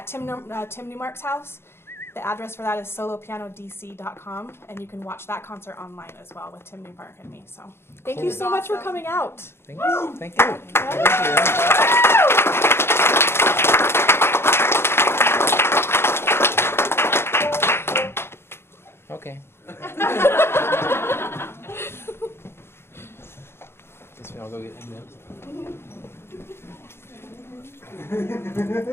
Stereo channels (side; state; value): right; late; 0.12 ms